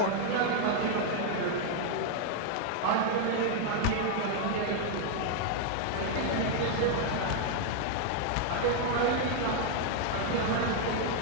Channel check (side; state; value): both; different; correlation 0.00